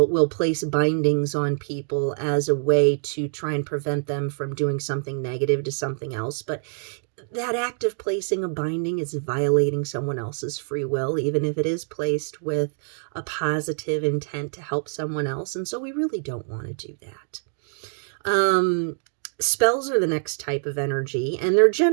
place bindings on people as a way to try and prevent them from doing something negative to something else. But that act of placing a binding is violating someone else's free will, even if it is placed with a positive intent to help someone else. And so we really don't want to do that. Spells are the next type of energy, and they're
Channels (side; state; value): left; silent; digital silence